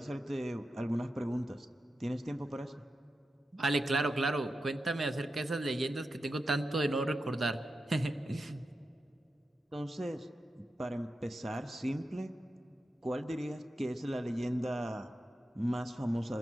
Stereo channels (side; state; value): both; normal; correlation 0.90